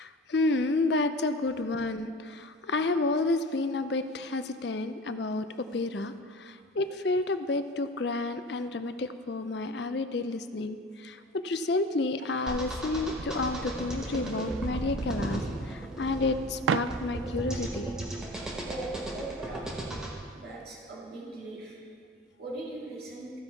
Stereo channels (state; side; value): normal; both; correlation 0.36